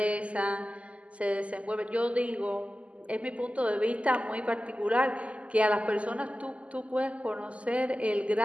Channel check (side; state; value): left; late; 0.063 ms